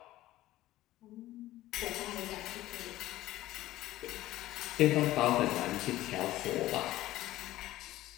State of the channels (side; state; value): right; quieter; 15.8 dB